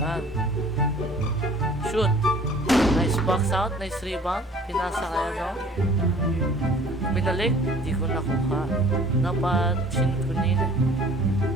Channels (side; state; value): both; normal; correlation 0.51